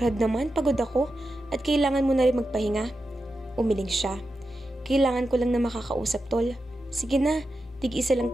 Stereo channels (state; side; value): normal; both; correlation 0.89